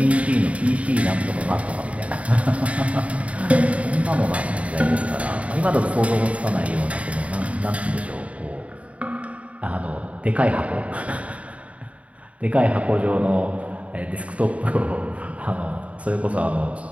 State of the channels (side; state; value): left; late; 0.065 ms